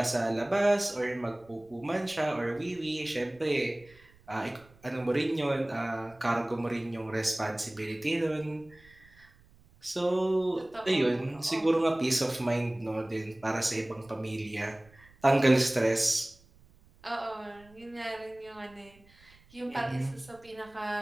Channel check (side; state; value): right; noise; rumble, 27 dB below the sound